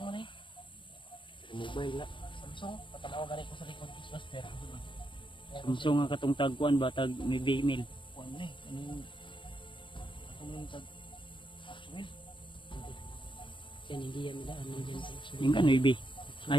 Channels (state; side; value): late; right; 0.24 ms